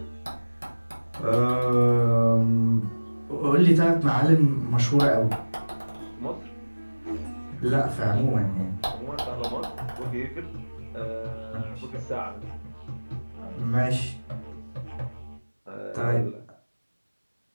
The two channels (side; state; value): both; inverted; correlation -1.00